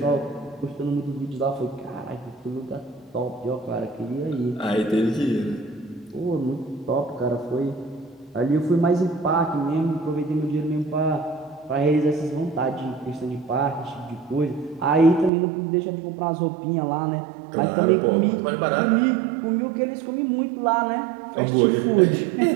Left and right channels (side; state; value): left; drops out; at 15.3 s